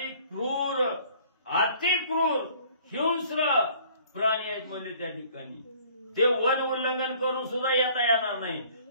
क्रूर अतिक्रूर हिंस्र प्राणी आहेत म्हणजे त्या ठिकाणी. ते वन उल्लंघन करून सुद्धा येता येणार नाही.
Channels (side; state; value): both; inverted; correlation -0.55